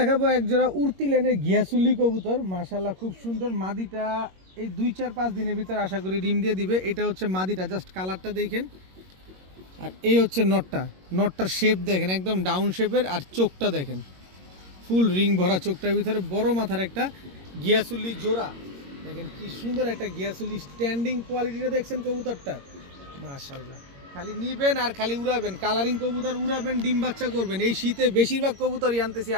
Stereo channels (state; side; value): late; left; 22 ms